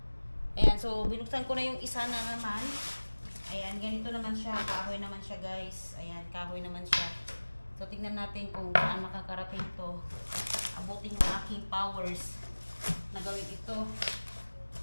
Ayan, so binuksan ko na yung isa na naman. Ayan, ganito naman siya, kahoy naman siya guys. Ayan, kahoy naman siya. So tingnan natin kung saan makakarating to. Abutin yung aking powers na gawin ito.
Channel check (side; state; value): both; inverted; correlation -1.00